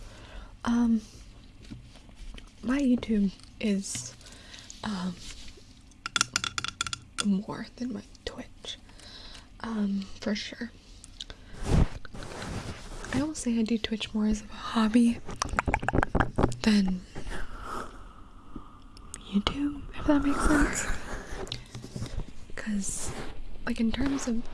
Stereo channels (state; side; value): identical; both; correlation 1.00